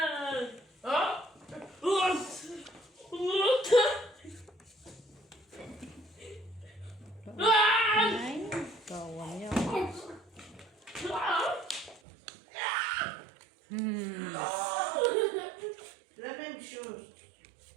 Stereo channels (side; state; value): left; drops out; at 12.0 s